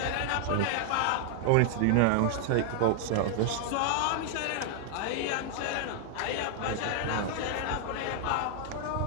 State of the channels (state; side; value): different; both; correlation 0.00